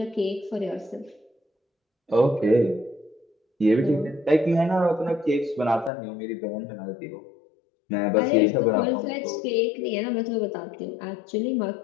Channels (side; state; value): right; drops out; at 5.9 s